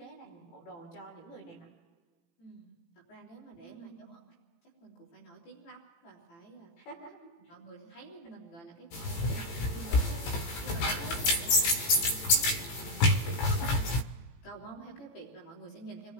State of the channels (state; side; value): late; right; 18 ms